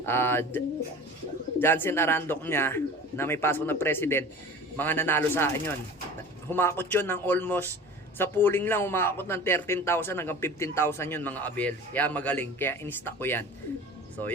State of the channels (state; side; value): normal; both; correlation 0.39